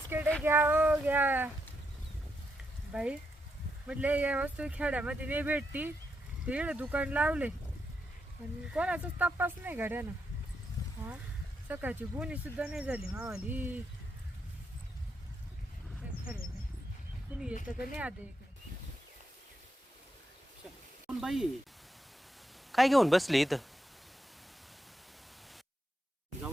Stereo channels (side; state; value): both; normal; correlation 0.81